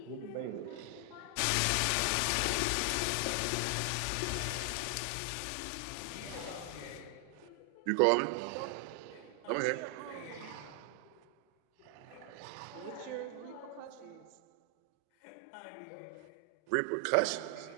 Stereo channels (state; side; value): different; both; correlation 0.00